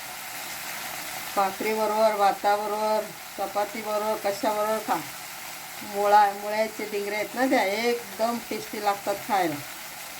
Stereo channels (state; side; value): identical; both; correlation 1.00